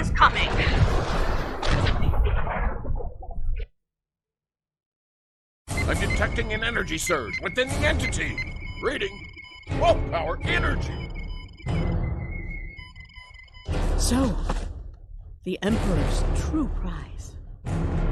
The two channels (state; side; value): identical; both; correlation 1.00